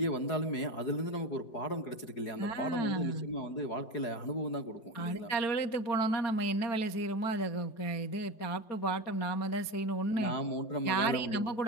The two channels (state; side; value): late; right; 4.3 ms